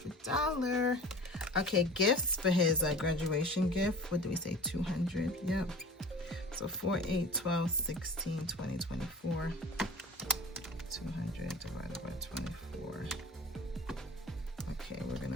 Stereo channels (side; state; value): both; normal; correlation 0.39